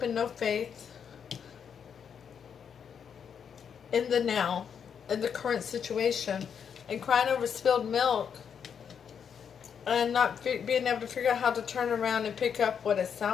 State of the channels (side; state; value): right; quieter; 7.4 dB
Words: and no faith in the now, in the current situation, and crying over spilled milk and not being able to figure out how to turn around and pick up what is